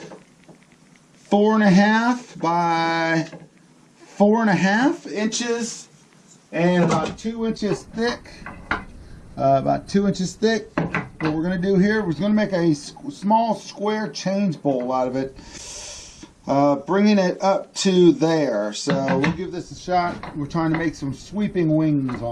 4.5 by 4.5 inches and about 2 inches thick. What we're going to do here, we're going to make a small square change bowl out of it, bringing it up to there. So we'll give this a shot. We're trying to make some sweeping wings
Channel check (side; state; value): both; identical; correlation 1.00